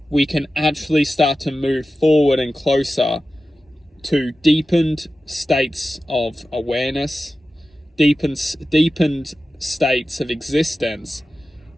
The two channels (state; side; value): normal; both; correlation 0.94